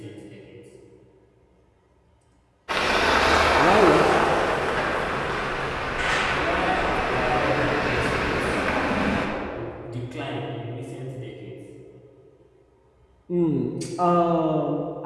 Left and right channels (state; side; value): identical; both; correlation 1.00